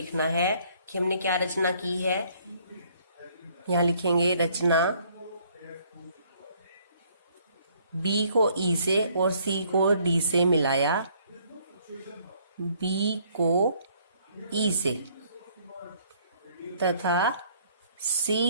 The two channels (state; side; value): inverted; both; correlation -0.63